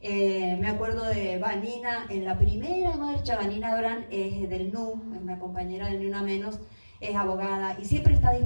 Me acuerdo de Vanina, en la primera marcha. Vanina Brand es del NU, es una compañera del Ni Una Menos, es abogada y siempre está a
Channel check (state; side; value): inverted; both; correlation -1.00